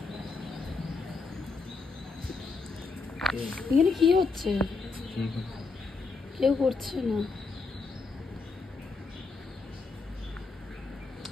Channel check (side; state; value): right; quieter; 4.2 dB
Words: এখানে কি হচ্ছে? কেউ করছে না।